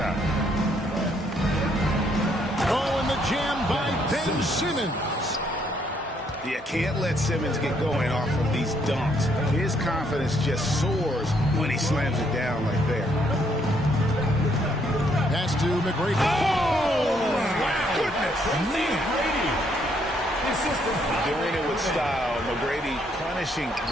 Oh, and the jam by Ben Simmons. Yeah, can't let Simmons get going off of these dunks. His confidence just soars when he slams it down like that. Pass to McGrady. Oh, my goodness. McGrady. Doing it with style. McGrady punishing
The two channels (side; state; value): both; normal; correlation 0.70